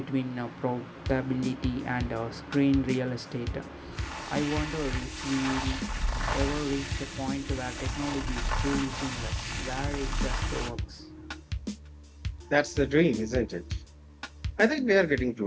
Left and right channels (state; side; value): identical; both; correlation 1.00